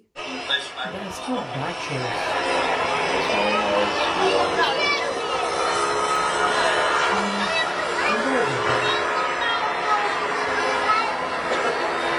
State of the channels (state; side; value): identical; both; correlation 1.00